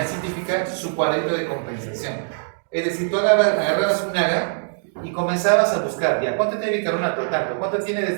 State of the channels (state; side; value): silent; left; digital silence